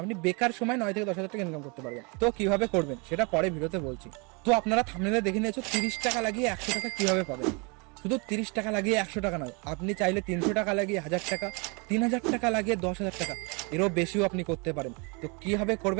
আপনি বেকার সময় 9 থেকে 10 হাজার টাকা ইনকাম করতে পারবেন। তো কিভাবে করবেন সেটা পরে ভিডিওতে বলছি। তো আপনারা থাম্বনেলে দেখে নিয়েছো 30 টাকা লাগিয়ে 100 টাকা কিভাবে পাবেন। শুধু 30 টাকা লাগিয়ে 100 টাকা নয়, আপনি চাইলে 300 টাকা লাগিয়ে 1000 টাকা, 3000 টাকা লাগিয়ে 10,000 টাকা, এরও বেশিও আপনি করতে পারেন। তো কিভাবে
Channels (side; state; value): left; quieter; 31.4 dB